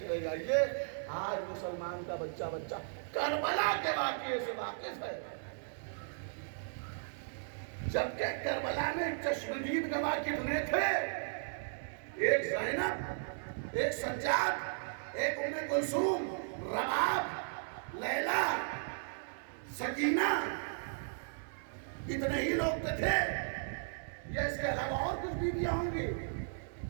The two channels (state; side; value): silent; left; digital silence